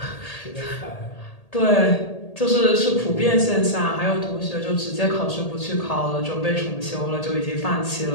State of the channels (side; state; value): right; late; 1.8 ms